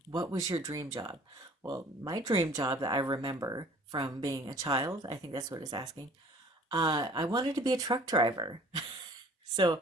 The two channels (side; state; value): both; normal; correlation 0.51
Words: what was your dream job? Well, my dream job that I remember from being a child, I think that's what it's asking. I wanted to be a truck driver. So